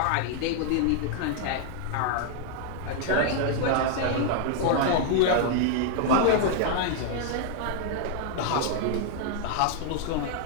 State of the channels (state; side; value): different; both; correlation 0.00